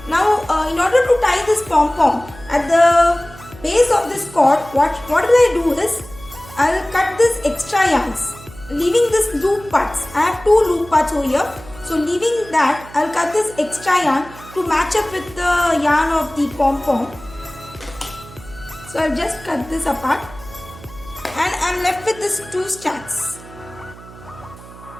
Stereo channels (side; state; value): right; noise; hum, 18 dB below the sound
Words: Now, in order to tie this pom-pom at the base of this cord, what will I do is, I will cut this extra yarns, leaving this loop parts. I have 2 loop parts over here. So leaving that, I will cut this extra yarn to match up with the yarn of the pom-pom. So I'll just cut this apart and I'm left with this 2 strands.